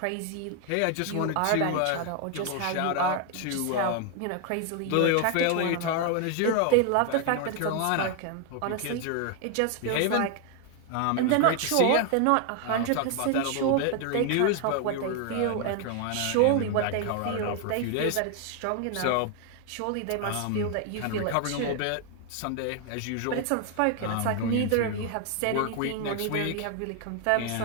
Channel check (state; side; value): different; both; correlation 0.00